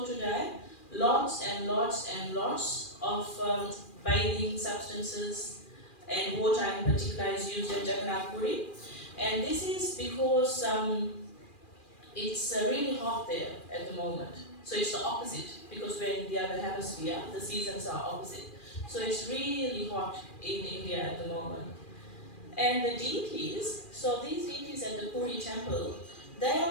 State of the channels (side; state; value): right; late; 2.4 ms